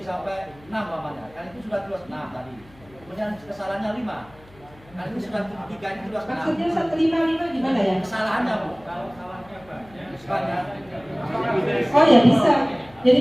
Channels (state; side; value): noise; left; hum, 25 dB below the sound